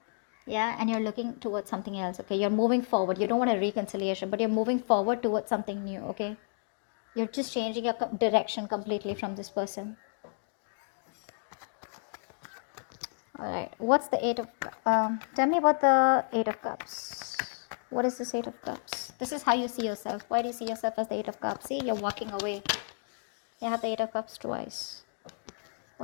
Yeah, and you're looking towards something else. Okay, you're moving forward. You don't want a reconciliation, but you're moving forward towards something new. Okay, you're just changing your direction completely from this person. All right, what's the Eight of tell me about the Eight of Cups. What is this Eight of Cups? This is how you see yourself. Why do you see yourself as the Eight of Cups? See, you're walking away. You have the Eight of Cups twice.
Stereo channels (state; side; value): silent; right; digital silence